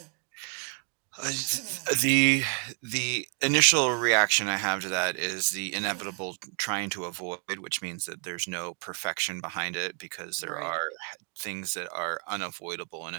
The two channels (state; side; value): quieter; left; 39.9 dB